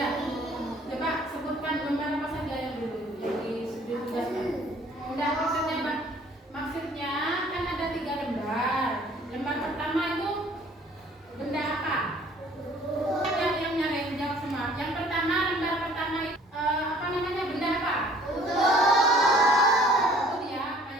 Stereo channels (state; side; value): normal; both; correlation 0.55